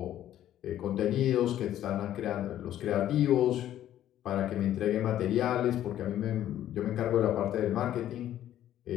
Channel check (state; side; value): quieter; right; 12.0 dB